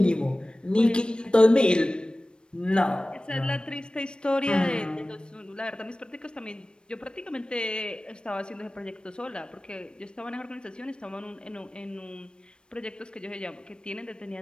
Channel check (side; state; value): right; late; 0.053 ms